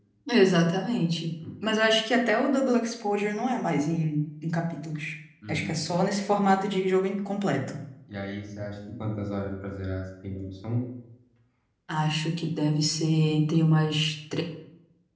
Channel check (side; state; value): both; identical; correlation 1.00